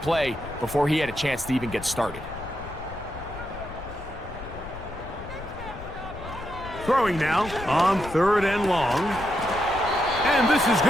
before he had a chance to even get started. Throwing now on 3rd and long. And this is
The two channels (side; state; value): left; noise; rumble, 13 dB below the sound